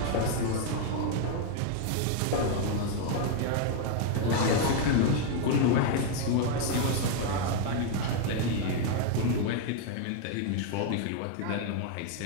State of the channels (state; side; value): different; both; correlation 0.00